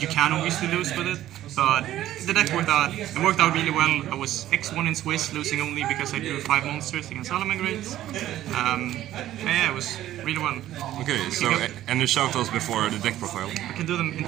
you can obviously lose with it. But the deck worked out. It worked out really well. I was X1 in Swiss, losing only because I drew 5 monsters against Salamagrates. Yeah, it was really well. Okay, so any shoutouts before the deck profile? I can do them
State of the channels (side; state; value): left; quieter; 13.4 dB